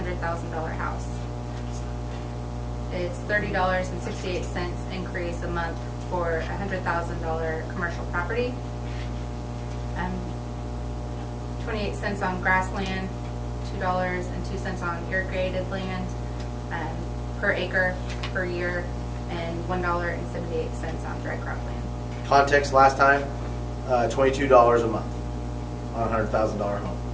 house. It's $30.68 increase a month for a $100,000 commercial property. 28 cents on grassland, $2.02 on irrigated land per acre per year, and $1.78 on dry crop land. Context last time, $22 a month on a $100,000 home.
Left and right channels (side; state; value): both; identical; correlation 1.00